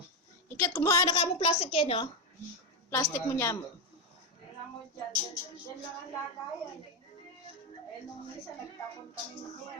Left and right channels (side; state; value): both; normal; correlation 0.07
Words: Ikit, kumuha na ka mo plastic yan, no? Plastic mo niya mo. Tingnan mo dyan. Dyan lang ang lagayan. Eh, nung isa nagtapon kami niya.